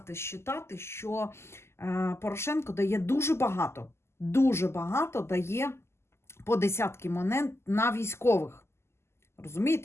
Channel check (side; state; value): right; late; 0.12 ms